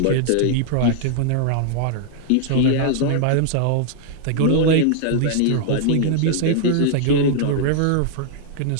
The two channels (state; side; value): different; both; correlation 0.00